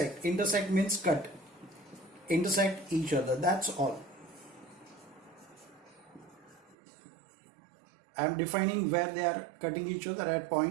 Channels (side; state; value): left; drops out; at 6.8 s